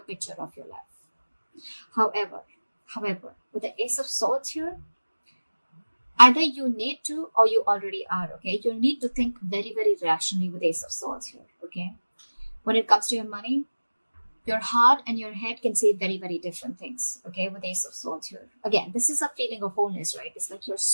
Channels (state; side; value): inverted; both; correlation -1.00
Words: of your life. However, with the Ace of Swords here, either you need to or you already are, okay? You need to think very, very rationally with Ace of Swords here, okay? When it comes to your money, your heart and your head can say very, very different things, okay, with Ace of Swords here. Again, this is a feeling of wholeness, right? It's like you're